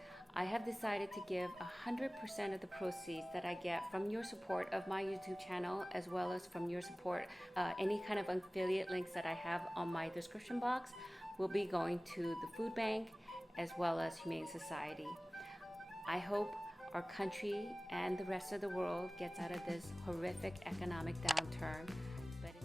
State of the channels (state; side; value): normal; both; correlation 0.98